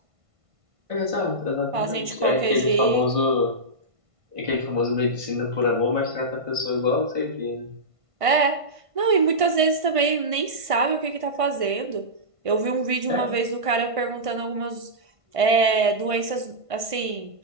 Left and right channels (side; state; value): left; late; 1.5 ms